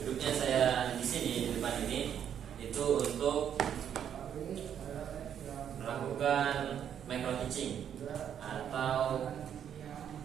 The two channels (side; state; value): left; quieter; 9.1 dB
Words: saya di sini di depan ini itu untuk melakukan micro teaching atau